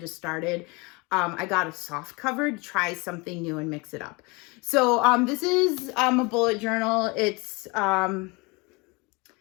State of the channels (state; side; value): quieter; right; 27.2 dB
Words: started, I got a soft cover to try something new and mix it up. So this is a bullet journal. It's